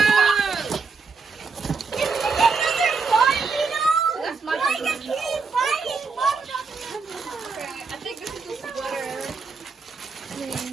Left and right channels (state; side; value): quieter; left; 4.8 dB